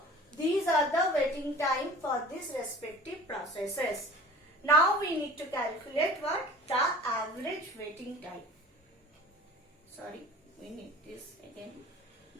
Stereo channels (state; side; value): normal; both; correlation 0.43